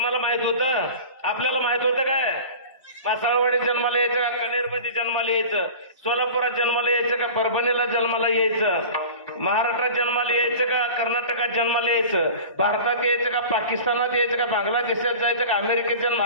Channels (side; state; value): both; inverted; correlation -0.36